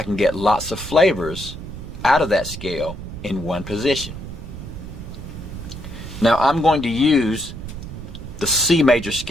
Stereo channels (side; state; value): right; noise; rumble, 10 dB below the sound